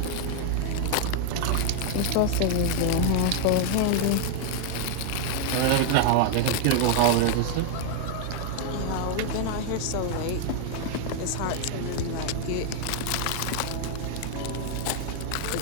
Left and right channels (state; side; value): different; both; correlation 0.00